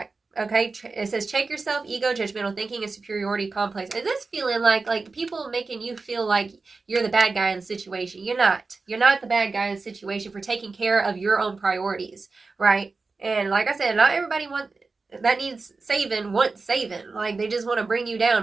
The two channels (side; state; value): left; quieter; 4.0 dB